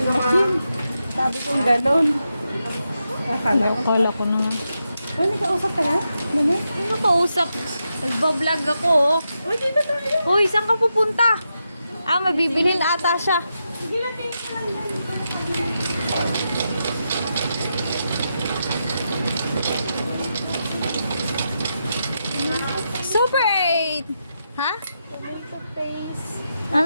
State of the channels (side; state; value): both; inverted; correlation -0.86